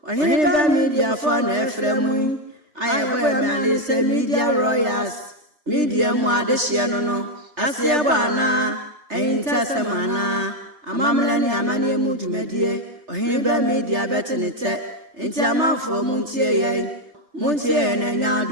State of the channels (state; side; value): late; left; 3.3 ms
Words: Oheneba Media for na efremu ayebo me say media royals media mu adehye no asebo ana entasema amamla ni amane mu dwumadie Oheneba Media betenete enti amanfo mu ntie ye na